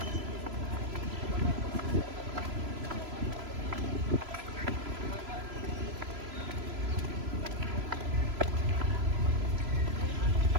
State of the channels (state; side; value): late; left; 3.0 ms